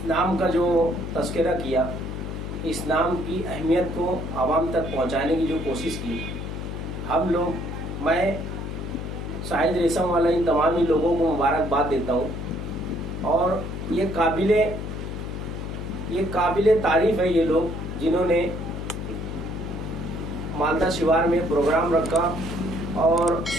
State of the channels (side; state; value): left; noise; hum, 6 dB below the sound